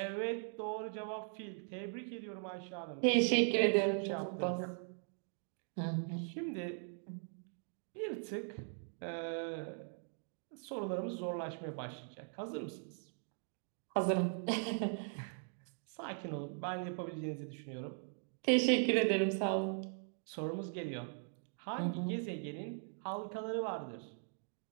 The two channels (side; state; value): left; silent; 51 dB below the other